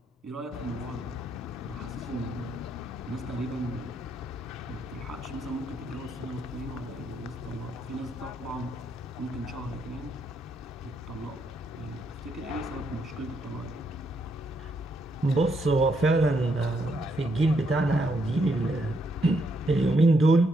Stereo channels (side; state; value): both; normal; correlation 0.76